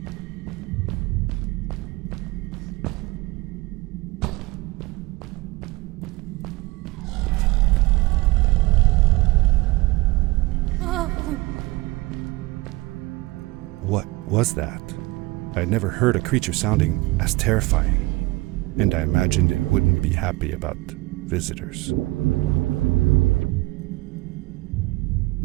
What was that? I had never heard a creature sounding as terrifying, and I imagined it wouldn't be happy about visitors.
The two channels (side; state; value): left; quieter; 21.7 dB